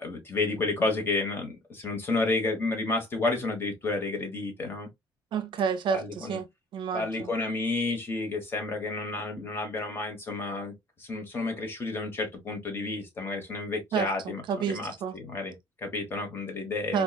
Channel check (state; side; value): normal; both; correlation 0.48